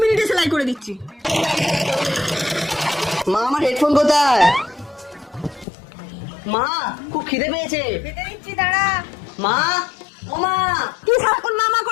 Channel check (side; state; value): right; drops out; at 5.7 s